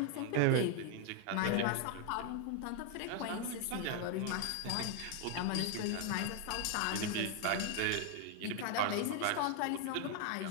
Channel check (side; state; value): both; different; correlation 0.00